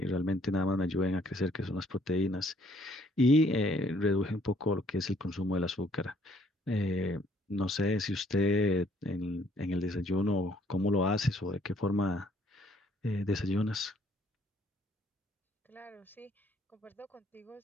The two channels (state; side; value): normal; both; correlation 0.64